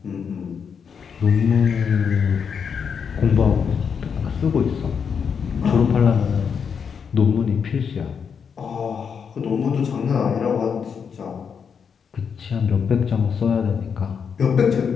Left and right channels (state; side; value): quieter; right; 6.7 dB